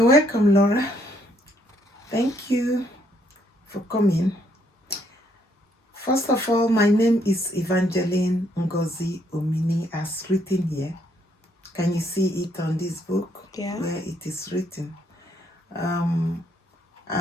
welcome, Laura. Thank you for coming. First of all, my name is Evangeline Ngozi Omini, as written here. Can you see it on this book? Yeah. Where it is written?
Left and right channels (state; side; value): normal; both; correlation 0.70